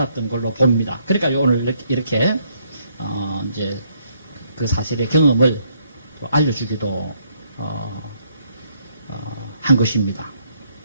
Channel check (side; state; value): both; inverted; correlation -0.70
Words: 걸로 봅니다. 그러니까 오늘 이렇게 이제 그 사실의 경험을 알려주기도 한 것입니다.